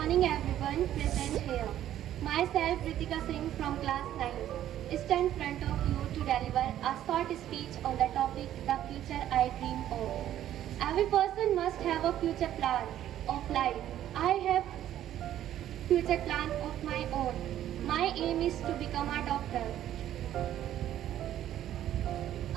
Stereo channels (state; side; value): quieter; left; 11.9 dB